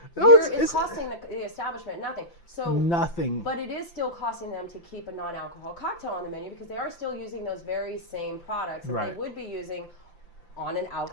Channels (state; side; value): late; right; 5.8 ms